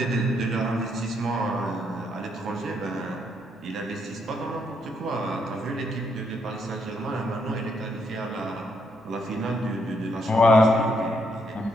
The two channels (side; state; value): both; normal; correlation 0.75